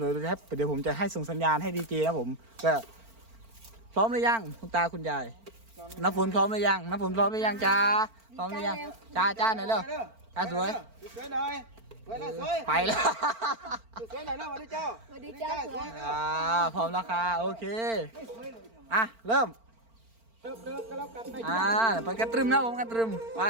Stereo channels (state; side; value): late; left; 4.4 ms